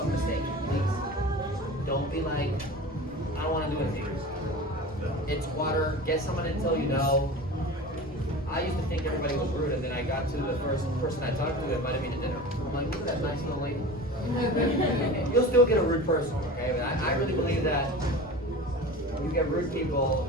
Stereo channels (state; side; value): normal; both; correlation 0.34